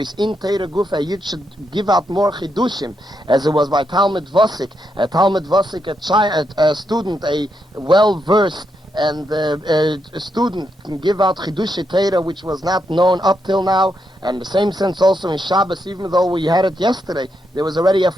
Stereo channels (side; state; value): both; normal; correlation 0.81